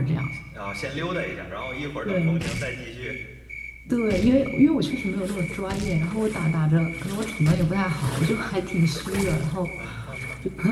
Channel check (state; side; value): identical; both; correlation 1.00